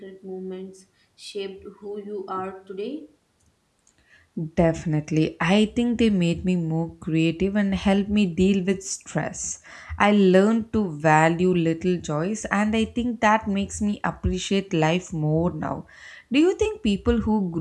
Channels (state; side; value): identical; both; correlation 1.00